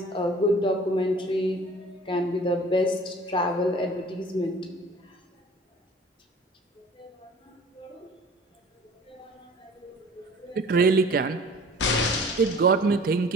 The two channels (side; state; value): both; normal; correlation 0.47